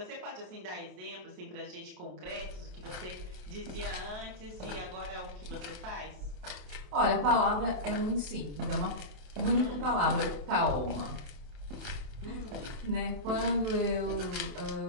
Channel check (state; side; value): late; left; 27 ms